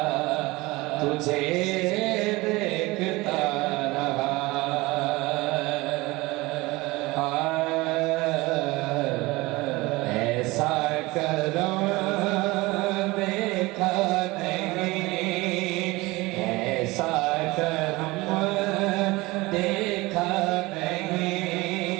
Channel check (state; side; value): quieter; left; 21.6 dB